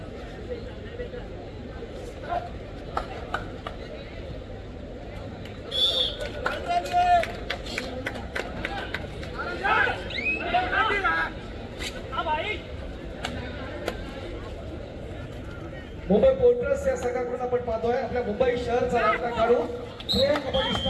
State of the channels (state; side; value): identical; both; correlation 1.00